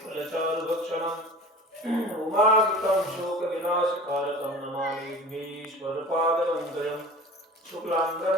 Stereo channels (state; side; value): normal; both; correlation 0.39